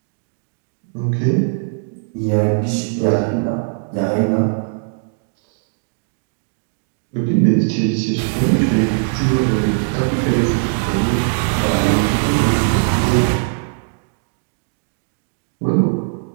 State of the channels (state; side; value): silent; left; digital silence